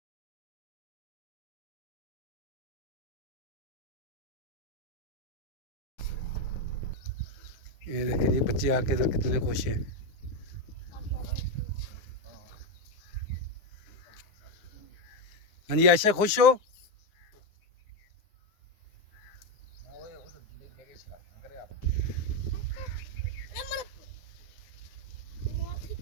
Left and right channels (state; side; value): late; right; 9.7 ms